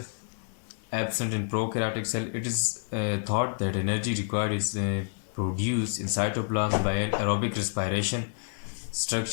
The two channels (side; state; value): right; silent; digital silence